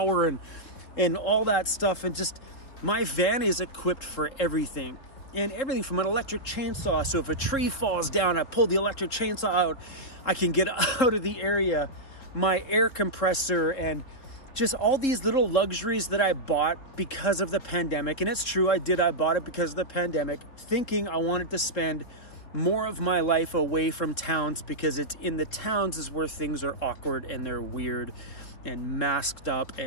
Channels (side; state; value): right; late; 3.7 ms